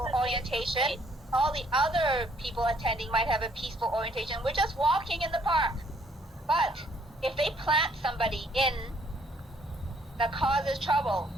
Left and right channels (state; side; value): normal; both; correlation 0.64